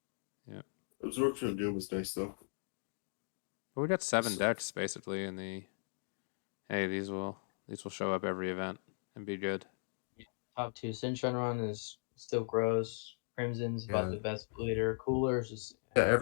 yeah, Absorption of Doom is nice though. but we got 7 So- decks basically in the. Hey, these will show up every event and be good. Top 2 Shenron is still gross. Crimson's about Yeah. the best bleeder. Cooler's just Yeah,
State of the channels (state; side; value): silent; right; digital silence